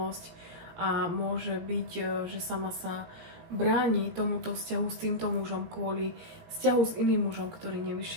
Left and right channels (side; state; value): left; late; 18 ms